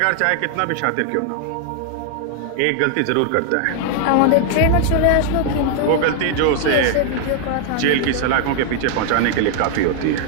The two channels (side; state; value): both; different; correlation 0.00